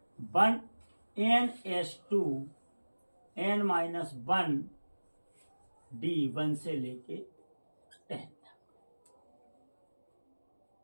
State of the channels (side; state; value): both; inverted; correlation -1.00